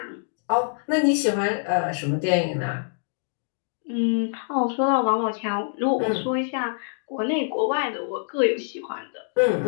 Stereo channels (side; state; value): right; silent; digital silence